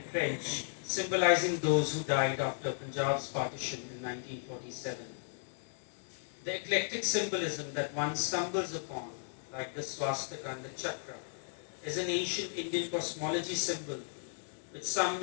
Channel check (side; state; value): right; silent; digital silence